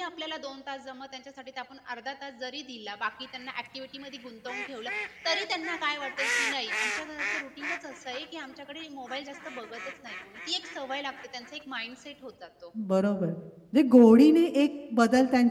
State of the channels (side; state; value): both; identical; correlation 1.00